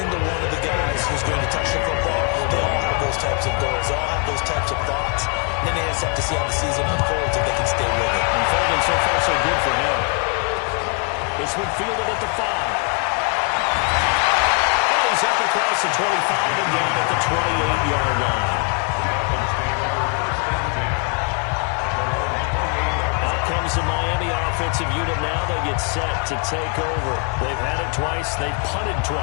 one of the guys who's going to touch the football, they all have those types of goals. They all have those types of thoughts. And then they just have to see how the season unfolds if they can stay with it. Unfolding so far so good for him. This one fielded at the 5. And he's up across the 25 and down at the 28-yard line. Comes the Miami offensive unit now. They get set to take over. They've had it twice. They've punted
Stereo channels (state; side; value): quieter; right; 36.9 dB